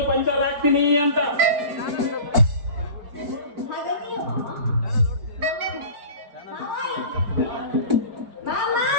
ಪಂಚರ್ ಹಾಕ್ತೀನಿ ಅಂತ.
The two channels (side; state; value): left; late; 5.0 ms